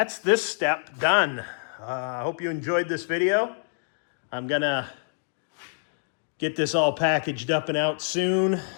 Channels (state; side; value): silent; right; digital silence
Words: this step done. I hope you enjoyed this video. I'm going to get this all packaged up and out soon.